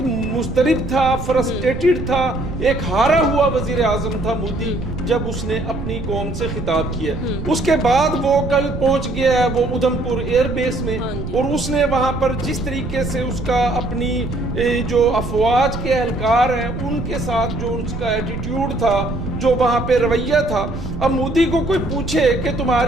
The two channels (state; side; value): noise; right; rumble, 7 dB below the sound